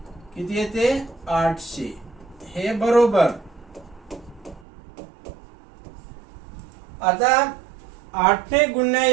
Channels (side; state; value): left; drops out; at 4.7 s